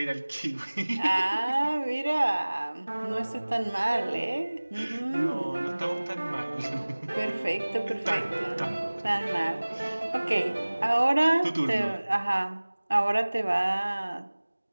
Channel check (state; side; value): inverted; both; correlation -1.00